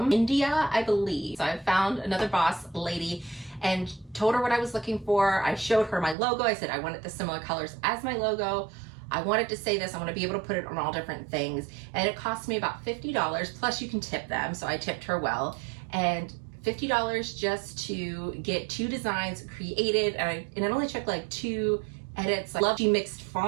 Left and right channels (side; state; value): left; drops out; at 6.2 s